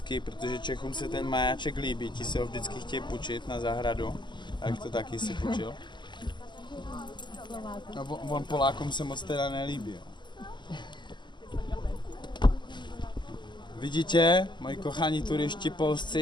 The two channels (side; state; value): right; late; 0.22 ms